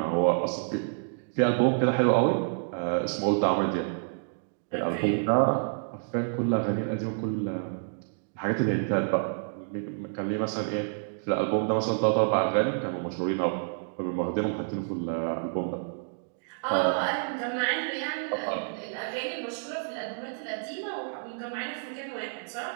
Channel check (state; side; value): silent; left; digital silence